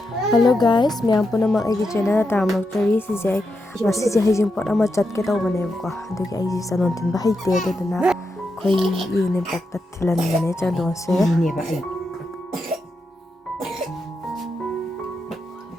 guys, miyang po naman ay channel na taramagtari si Zay. Masih Heijing pot ama chat ke tau bane ko. Adugi ai sanon tin ba haite aduna khoi yene pakta thilan bane chandon se. Ni ba ai.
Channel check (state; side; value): normal; both; correlation 0.85